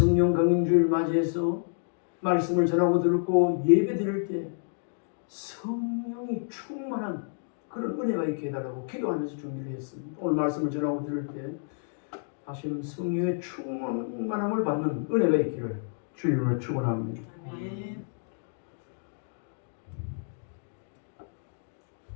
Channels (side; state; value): right; silent; digital silence